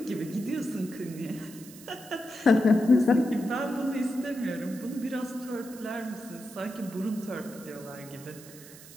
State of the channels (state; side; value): noise; right; hiss, 18 dB below the sound